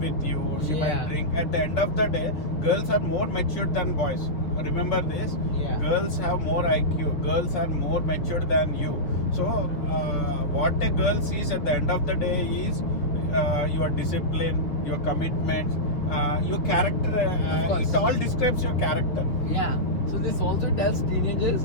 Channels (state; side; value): late; right; 6.9 ms